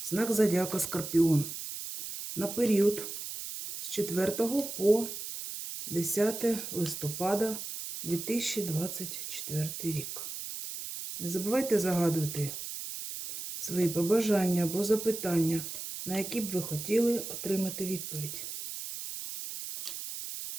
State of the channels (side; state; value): right; noise; hiss, 7 dB below the sound